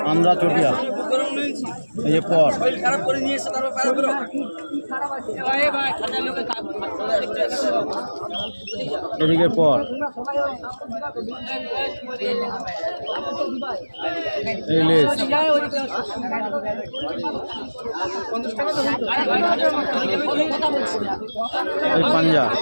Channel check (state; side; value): inverted; both; correlation -1.00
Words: আন্দ্রা চটিয়াল, এই যে পর এদিকে পর, এই লেজ, এই পাঞ্জা,